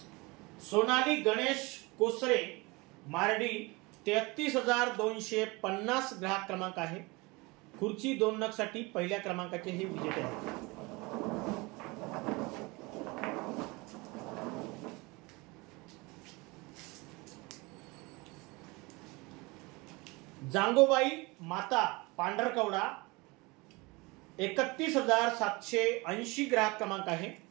सोनाली गणेश कोसरे मार्डी 33,250 ग्राहक क्रमांक आहे। खुर्ची 2 नग साठी पहिल्या क्रमांकाचे हे विजेते आहेत। जांगोबाई माता पांढरकवडा 31,780 ग्राहक क्रमांक आहे।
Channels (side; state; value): left; quieter; 24.9 dB